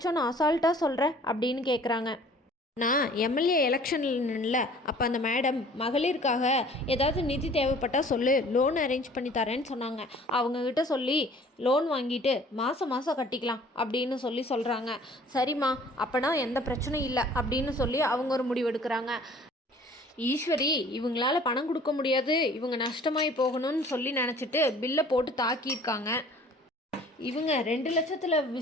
அசால்ட்டாக சொல்கிற அப்படின்னு கேட்குறாங்க. நான் எம்எல்ஏ எலெக்ஷனில் அப்போ அந்த மேடம் மகளிருக்காக ஏதாவது நிதி தேவைப்பட்டால் சொல்லு, லோன் அரேஞ்ச் பண்ணி தரேன்னு சொன்னாங்க. அவங்கக்கிட்ட சொல்லி லோன் வாங்கிட்டு மாதம் மாதம் கட்டிக்கலாம் அப்படின்னு சொல்கிறாங்க. சரிம்மா, அப்போனா எந்த பிரச்சனையும் இல்லை அப்படின்னு சொல்லி அவங்க ஒரு முடிவு எடுக்கிறாங்க. ஈஸ்வரி இவங்களால பணம் கொடுக்க முடியாது, இவங்க நஷ்டமாகி போகணும்னு சொல்லி நினச்சிட்டு பில்லை போட்டு தாக்கியிருக்காங்க. இவங்க 2 லட்சத்தில்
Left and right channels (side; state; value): both; normal; correlation 0.51